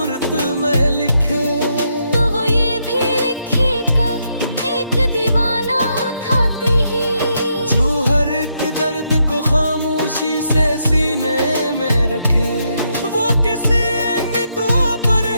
में लिखे, तो वो ये भी लिखेगा एक दीवाना था ही, जो हर एक दर्द को खामोशी से सीने में रखे। वो किसी दुआ पर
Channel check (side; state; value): both; inverted; correlation -0.78